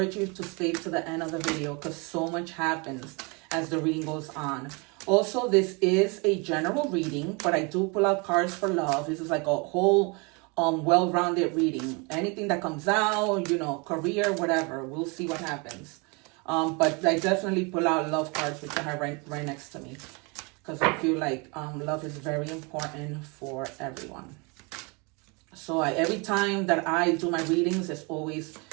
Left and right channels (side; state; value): left; quieter; 30.3 dB